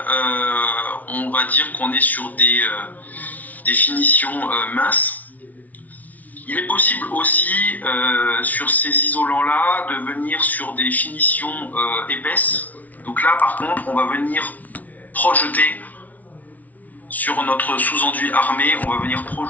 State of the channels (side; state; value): right; late; 0.074 ms